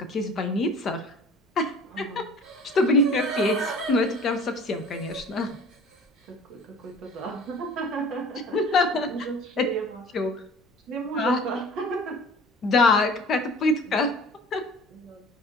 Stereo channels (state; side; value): normal; both; correlation 0.44